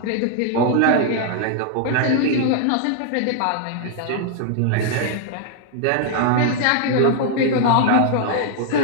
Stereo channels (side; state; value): both; different; correlation 0.00